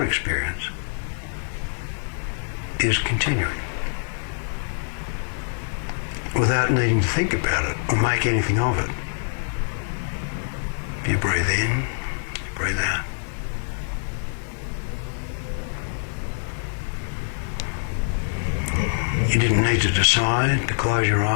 experience is continuing without needing to think about it or make anything of it. You breathe in, you breathe out. You didn't need to decide to close your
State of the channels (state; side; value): silent; right; digital silence